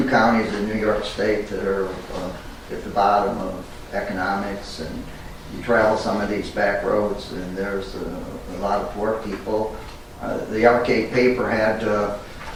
counties in New York State that are at the bottom of economics, and you travel some of these back roads and there's a lot of poor people. The Alle-Catt paper had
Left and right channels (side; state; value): both; identical; correlation 1.00